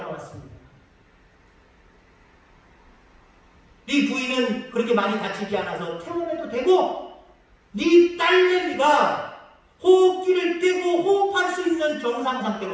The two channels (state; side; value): identical; both; correlation 1.00